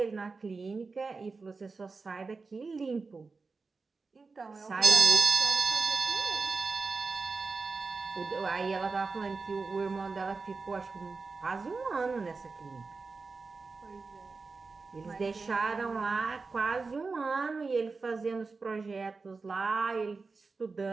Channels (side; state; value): left; quieter; 4.3 dB